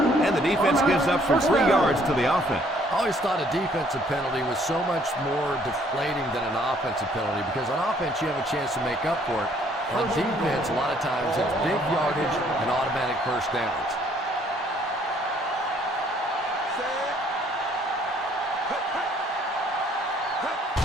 And the defense gives up some 3 yards to the offense. I always thought a defensive penalty was so much more deflating than an offensive penalty because on offense you have a chance to make up for it. On defense, a lot of times it's big yardage and automatic first downs.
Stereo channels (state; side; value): normal; both; correlation 0.63